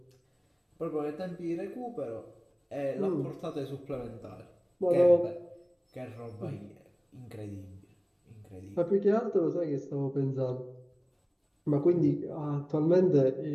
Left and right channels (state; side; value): identical; both; correlation 1.00